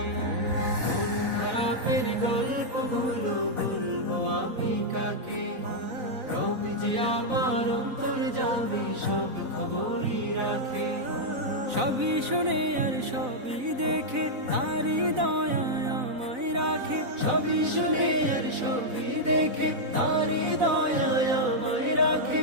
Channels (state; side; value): late; left; 4.0 ms